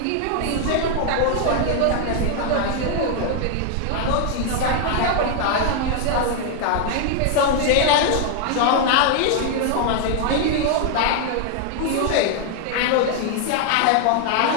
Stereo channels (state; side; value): different; both; correlation 0.00